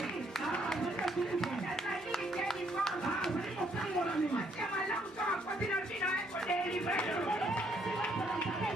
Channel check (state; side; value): normal; both; correlation 0.69